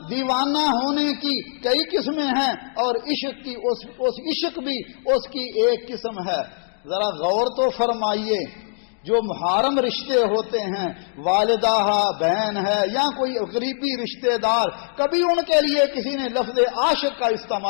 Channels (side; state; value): right; silent; digital silence